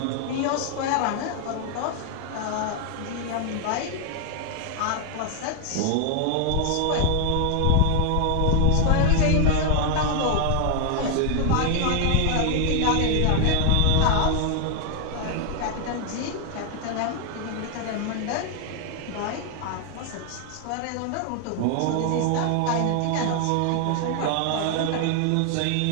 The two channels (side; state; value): both; different; correlation 0.00